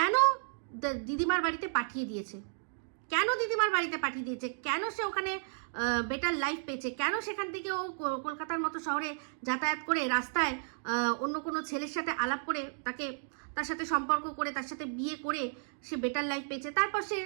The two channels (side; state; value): left; silent; digital silence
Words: দিদিমার বাড়িতে পাঠিয়ে দিয়েছে? কেন সে ওখানে বেটার লাইফ পেয়েছে? কেন সেখান থেকে ও কলকাতার মতো শহরে যাতায়াত করে রাস্তায় অন্য কোনো ছেলের সাথে আলাপ করে তার সাথে সম্পর্ক করে তার সাথে বিয়ে করে সে বেটার লাইফ পেয়েছে? তারপর সে